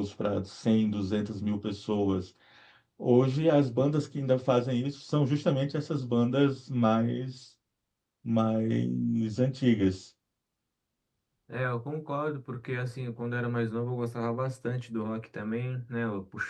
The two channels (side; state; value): both; identical; correlation 1.00